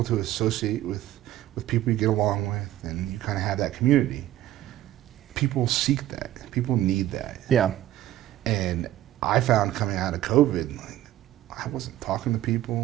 to associate with people you get along with and you kind of have that community. People seek that. People need that. Yeah. And I found coming out of COVID, like, I wasn't talking to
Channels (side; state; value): left; quieter; 13.7 dB